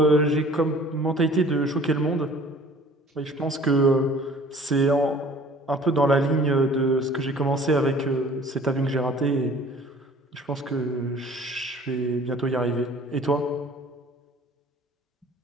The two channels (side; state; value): both; normal; correlation 0.50